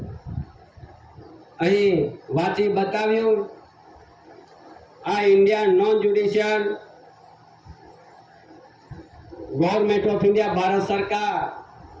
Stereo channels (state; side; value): identical; both; correlation 1.00